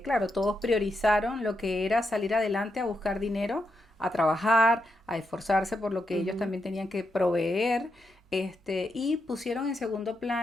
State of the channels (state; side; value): normal; both; correlation 0.83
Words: claro, todos priorizaron lo que era salir adelante a buscar dinero, a trabajar, a esforzarse por lo que ellos ujú. también tenían que proveer, y pusieron en segundo